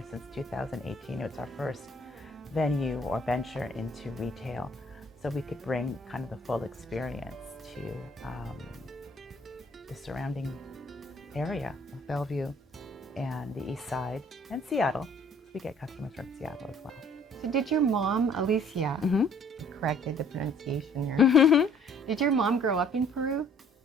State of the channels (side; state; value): both; normal; correlation 0.58